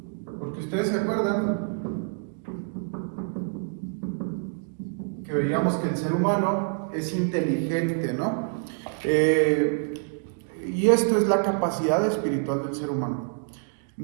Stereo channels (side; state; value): left; silent; 60 dB below the other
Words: Porque ustedes se acuerdan que veíamos que el ser humano es inteligente, ¿no? Y esto es la capacidad espiritual del ser humano.